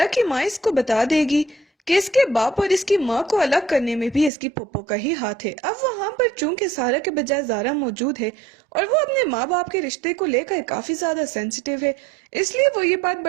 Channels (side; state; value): left; drops out; at 4.3 s